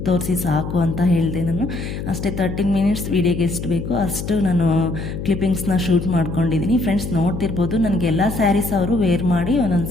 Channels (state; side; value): noise; left; hum, 6 dB below the sound